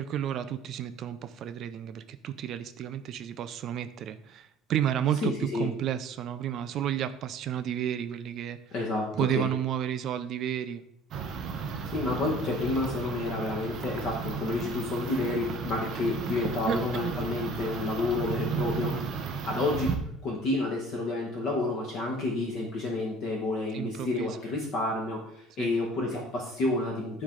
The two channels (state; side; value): normal; both; correlation 0.49